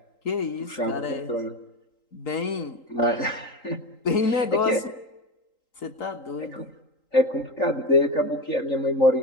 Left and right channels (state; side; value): late; right; 3.8 ms